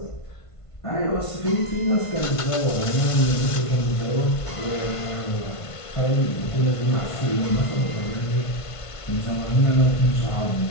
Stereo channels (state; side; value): late; right; 1.5 ms